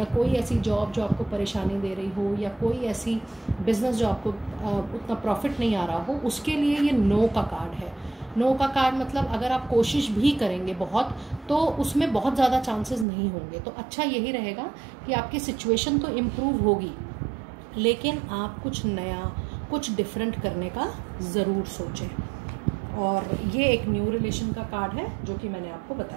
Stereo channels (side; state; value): left; drops out; at 13.1 s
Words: कोई ऐसी जॉब जो आपको परेशानी दे रही हो, या कोई ऐसी बिजनेस जो आपको उतना प्रॉफिट नहीं आ रहा हो, उसके लिए ये नो का कार्ड है। नो का कार्ड मतलब अगर आप कोशिश भी करेंगे बहुत, तो उसमें बहुत ज़्यादा चांसेस नहीं होंगे। तो अच्छा यही रहेगा कि आपकी सिचुएशन तो इम्प्रूव होगी, लेकिन आप कुछ नया, कुछ डिफरेंट करने का ज़रूर सोचें। और ये एक न्यू रिलेशन का कार्ड है जो कि मैंने आपको